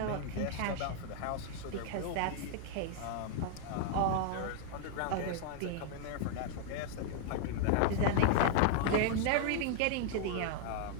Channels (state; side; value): different; both; correlation -0.01